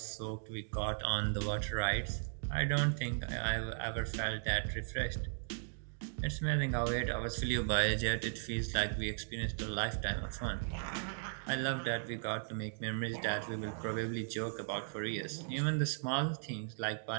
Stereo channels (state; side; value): silent; left; digital silence